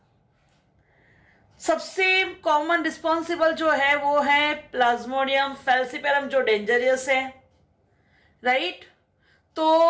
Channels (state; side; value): identical; both; correlation 1.00